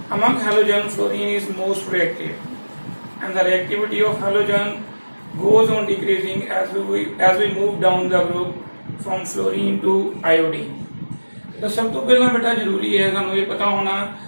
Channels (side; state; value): both; inverted; correlation -1.00